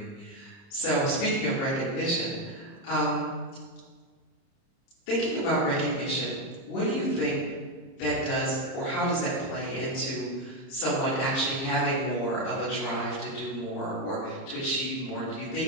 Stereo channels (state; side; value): late; right; 30 ms